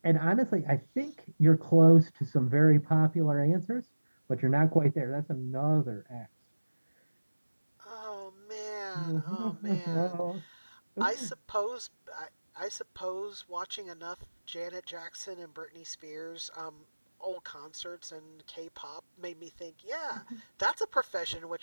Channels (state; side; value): inverted; both; correlation -1.00